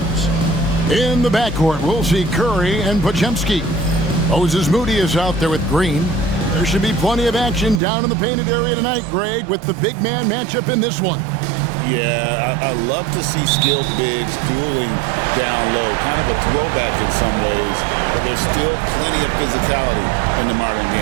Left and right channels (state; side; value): drops out; left; at 7.8 s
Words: in the backcourt, we'll see Curry and Podziemski. Moses Moody is out there with Green. There should be plenty of action down in the painted area tonight, Greg, with the big man matchup in this one. Yeah, I love to see skilled bigs dueling down low. Kind of a throwback in some ways, but there's still plenty of physicality in the modern